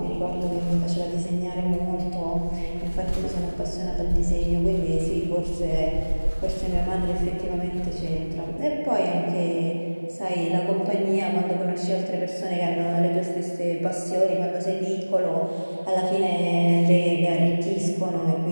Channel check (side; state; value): both; inverted; correlation -1.00